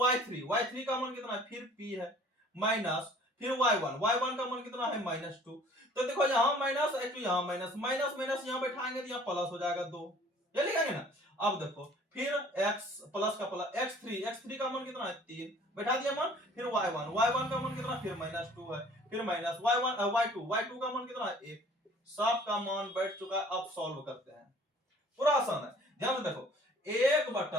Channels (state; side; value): normal; both; correlation 0.52